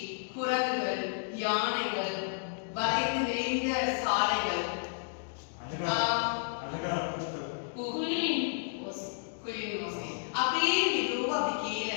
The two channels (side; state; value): right; silent; digital silence